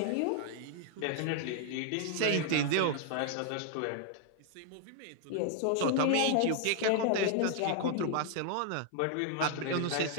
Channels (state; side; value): different; both; correlation 0.00